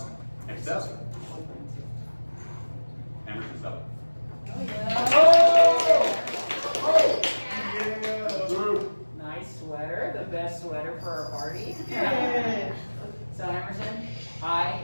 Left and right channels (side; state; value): both; inverted; correlation -1.00